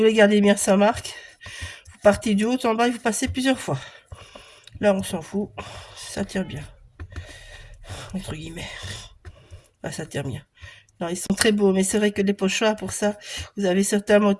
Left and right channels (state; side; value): identical; both; correlation 1.00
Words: garder bien sa marque, vous partez du haut en bas et vous passez plusieurs fois. Là, on s'en fout. Ça tire bien. Entre guillemets. Là, ça tire bien. Non, ils sont très beaux, mais c'est vrai que les pochoirs, pour ça, vous avez certains